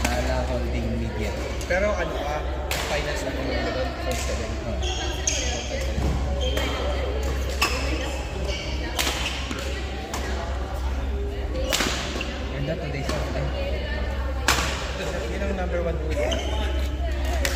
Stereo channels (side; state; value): both; identical; correlation 1.00